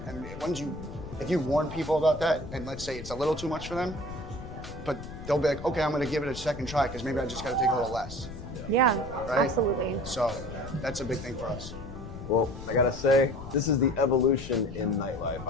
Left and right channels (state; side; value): noise; left; rumble, 11 dB below the sound